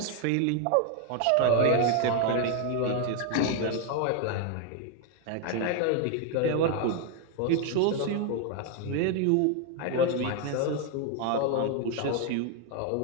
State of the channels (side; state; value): both; different; correlation 0.01